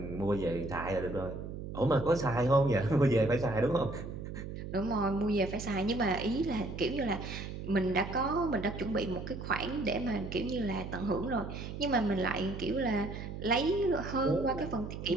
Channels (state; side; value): noise; right; hum, 8 dB below the sound